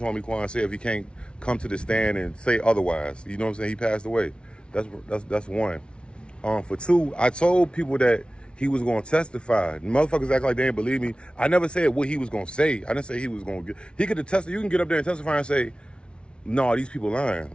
Quan said if he can't come to the stand and say otherwise. You know what I'm saying? He passed away. That's one. For two, I told people that he was going to testify. Motherfuckers act like they didn't believe me. I never said what he was going to say. I didn't say he was going to get. He could have tested. You can get up there and testify and say, "No, these people lying."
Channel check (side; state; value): right; late; 0.057 ms